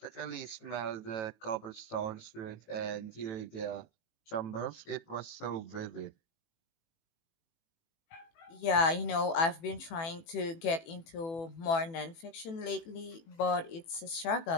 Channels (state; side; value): late; right; 18 ms